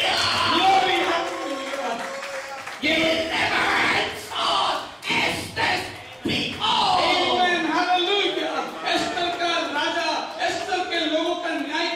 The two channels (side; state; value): both; identical; correlation 1.00